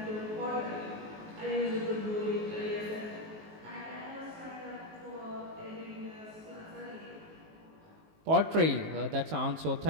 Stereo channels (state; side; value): late; left; 19 ms